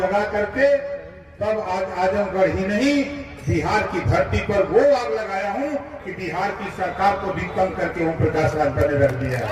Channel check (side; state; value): both; identical; correlation 1.00